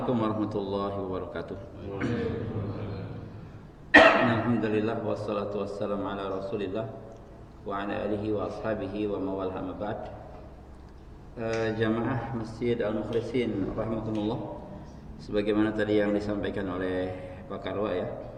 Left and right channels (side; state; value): both; identical; correlation 1.00